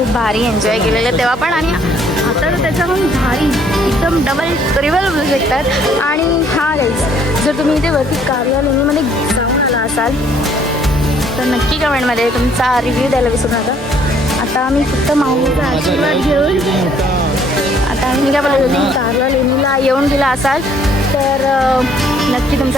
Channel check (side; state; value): both; normal; correlation 0.63